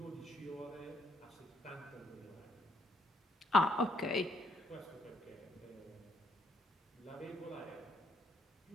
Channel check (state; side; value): normal; both; correlation 0.71